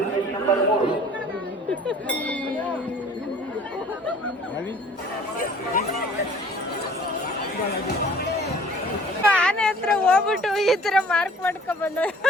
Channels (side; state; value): both; normal; correlation 0.51